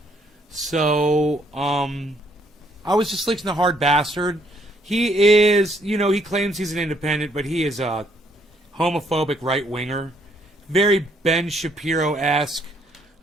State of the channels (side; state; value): both; normal; correlation 0.68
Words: So, I was just listening to Hard Bastard. He is, you know, he claims he's an independent, but he is a homophobic right-winger. Very Ben Shapiro-esque